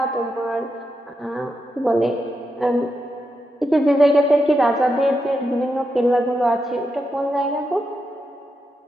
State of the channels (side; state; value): both; normal; correlation 0.85